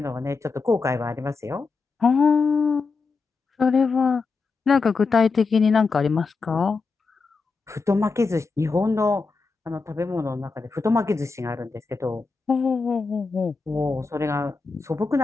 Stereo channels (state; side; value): quieter; right; 4.4 dB